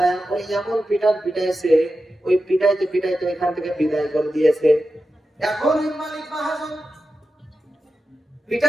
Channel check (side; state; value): both; normal; correlation 0.91